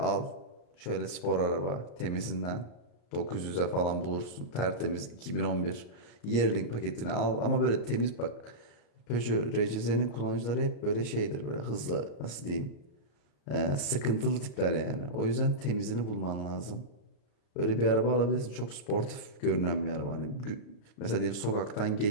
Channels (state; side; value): late; right; 34 ms